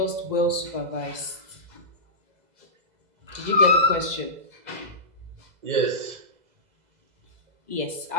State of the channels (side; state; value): left; late; 2.0 ms